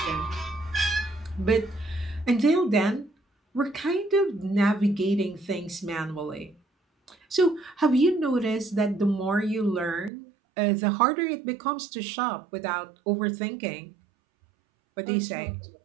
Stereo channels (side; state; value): left; drops out; at 10.1 s